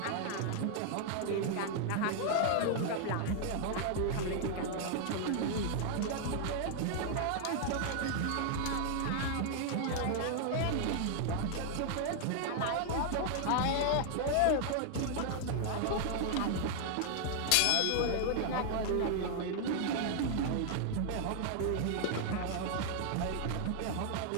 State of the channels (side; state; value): both; different; correlation 0.00